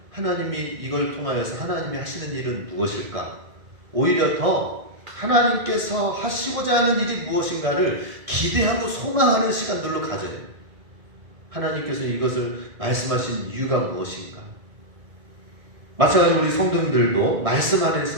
하나님이 이걸 통하여서 하나님이 하시는 일은 무엇일까? 오히려 더 하나님께서 하시고자 하는 일이 무엇인가를 기대하고 소망하는 시간들로 가져요. 하나님께서 이것을 말씀하신 이유가 무엇인가? 마찬가지로 우리 성도님들도 말씀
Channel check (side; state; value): left; late; 1.6 ms